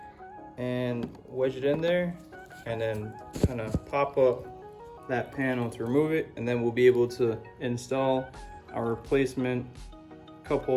and wedge it in there, and then kind of pop up that panel to remove it, and then we'll be able to install our replacement cup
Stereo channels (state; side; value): identical; both; correlation 1.00